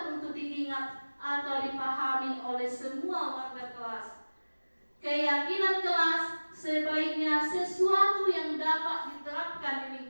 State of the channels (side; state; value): both; inverted; correlation -1.00